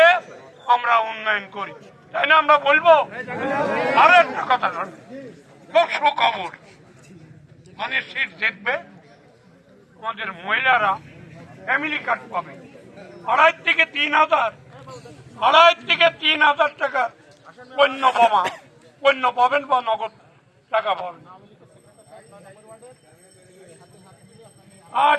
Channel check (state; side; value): identical; both; correlation 1.00